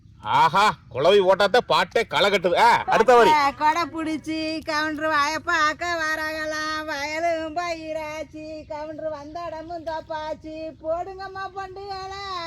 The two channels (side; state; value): both; identical; correlation 1.00